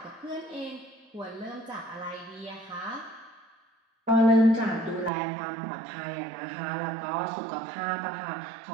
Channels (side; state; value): left; drops out; at 5.1 s